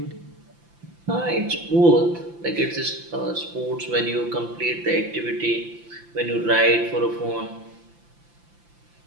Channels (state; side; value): late; left; 5.8 ms